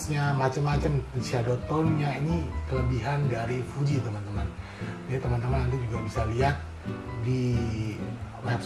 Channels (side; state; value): both; identical; correlation 1.00